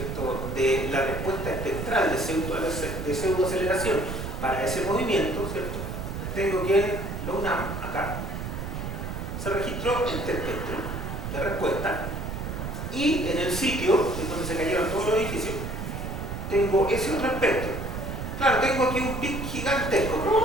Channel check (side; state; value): right; noise; rumble, 5 dB below the sound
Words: de la respuesta espectral de pseudoaceleración para ese movimiento, ¿cierto?, tengo que en la UNAM, acá, se registró este espectro de respuesta. Y en el sitio, en donde se cayeron todos los edificios, tengo ese otro espectro. Claro, tengo aquí un pic gigantesco.